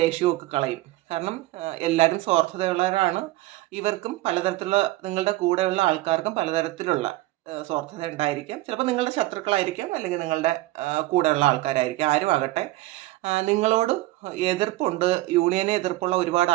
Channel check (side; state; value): left; quieter; 17.9 dB